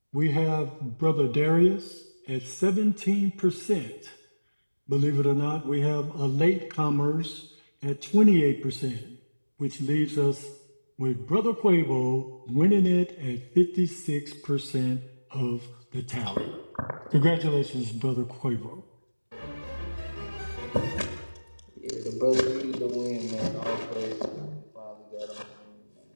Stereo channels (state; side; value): inverted; both; correlation -1.00